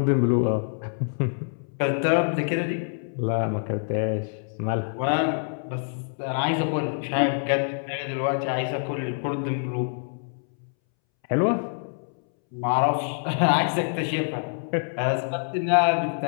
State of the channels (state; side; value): silent; right; 61 dB below the other